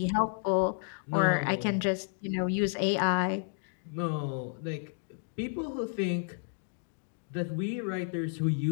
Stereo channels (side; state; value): right; silent; digital silence